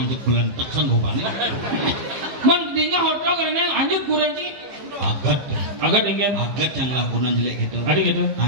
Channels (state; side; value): late; left; 15 ms